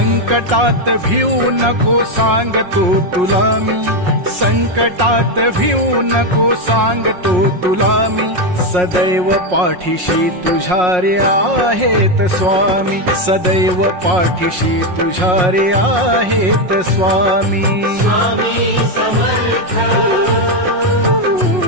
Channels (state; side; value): late; left; 5.5 ms